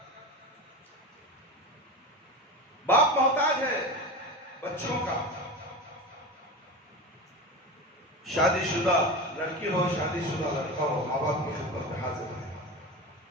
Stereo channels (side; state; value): both; normal; correlation 0.26